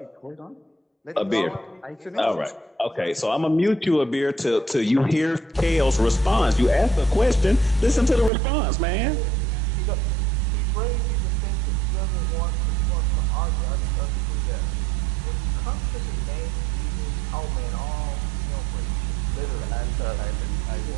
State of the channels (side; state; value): left; drops out; at 8.3 s